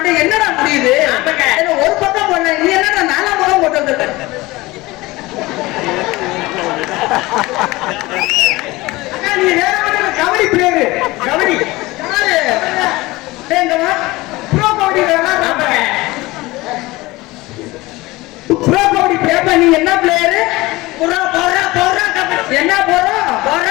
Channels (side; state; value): right; quieter; 20.5 dB